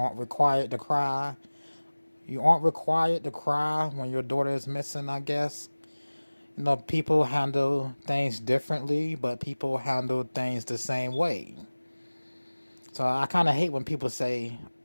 required to cry. You aren't required to cry when your daughter is missing, I guess. People handle things differently, but people handle things the same way. So I kind of hate when people say,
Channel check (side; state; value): both; inverted; correlation -1.00